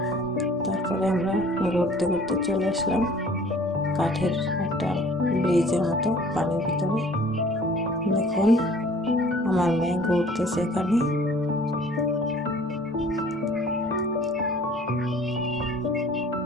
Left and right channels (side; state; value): both; normal; correlation 0.51